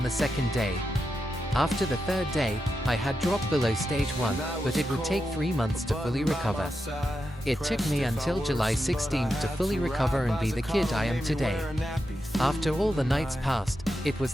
the second day. After the third day, I had dropped below stage 1, but it would take 3 months to fully recover. It took me until July 16th to fully recover and be the kid I am today. After all the nights passed, it was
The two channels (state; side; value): normal; both; correlation 0.88